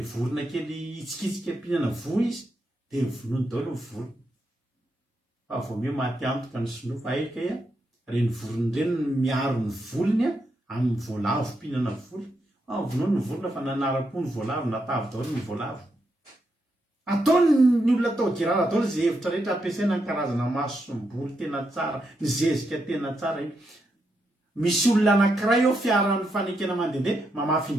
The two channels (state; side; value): normal; both; correlation 0.82